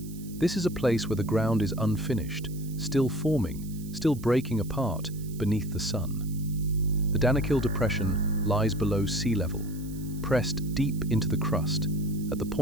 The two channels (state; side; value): noise; right; hiss, 19 dB below the sound